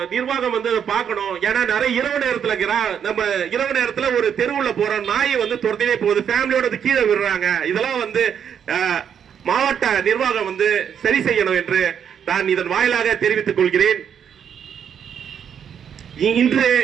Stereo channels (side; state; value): left; quieter; 8.2 dB